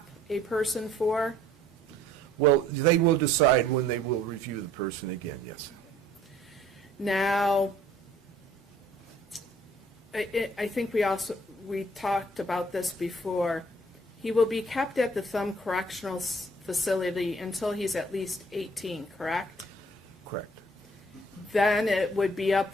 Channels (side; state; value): both; normal; correlation 0.57